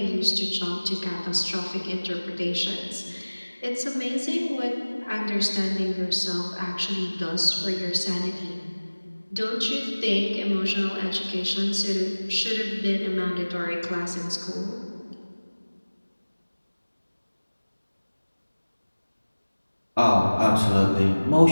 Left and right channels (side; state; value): both; inverted; correlation -1.00